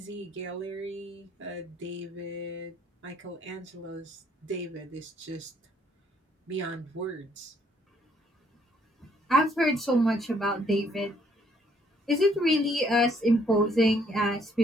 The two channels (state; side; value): normal; both; correlation 0.67